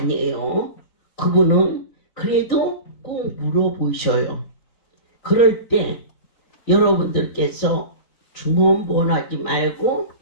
그분은 그래도 꼭 물어보셔요. 그럴 때 여러분들께서 중언부언하지 말고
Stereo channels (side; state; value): right; late; 3.9 ms